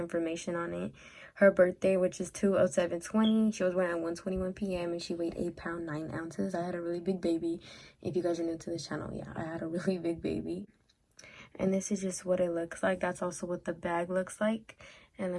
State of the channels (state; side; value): identical; both; correlation 1.00